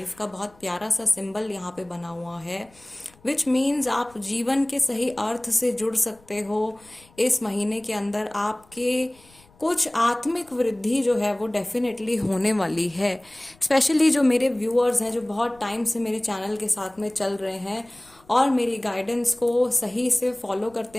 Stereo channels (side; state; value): left; noise; rumble, 29 dB below the sound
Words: का बहुत प्यारा सा सिंबल यहाँ पे बना हुआ है, विच मीन्स आप जीवन के सही अर्थ से जुड़ सकते हो। इस महीने के अंदर आपके कुछ आत्मिक वृद्धि जो है वो डेफिनेटली होने वाली है। स्पेशली जो मेरे व्यूअर्स हैं, जो बहुत टाइम से मेरे चैनल के साथ में चल रहे हैं और मेरी गाइडेंस को सही से फॉलो करते